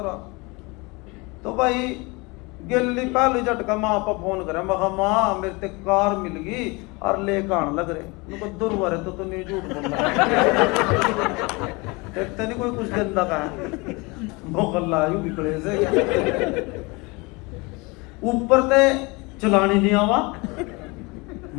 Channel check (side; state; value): right; quieter; 26.5 dB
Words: तो भाई गिल्ली पहले झटका माँ पर फोन करे मैं माँ मेरे ते कार मिल गई और लेकर आने लग रहे उनको दुर्वारे तो नहीं झूठ बोल रहा देखते नहीं कोई कुछ गंदा का मोहल्ला यू बिगड़े से ऊपर ते चलानी नहीं आवा